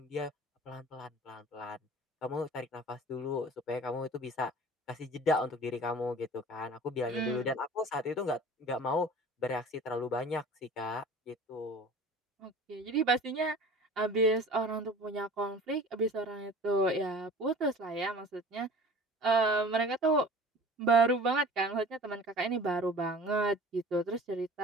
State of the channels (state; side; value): normal; both; correlation 0.42